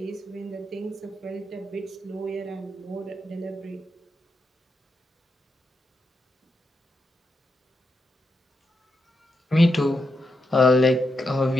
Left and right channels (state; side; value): normal; both; correlation 0.84